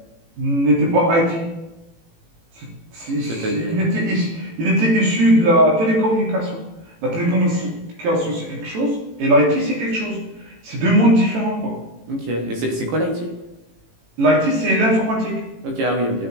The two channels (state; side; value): late; left; 18 ms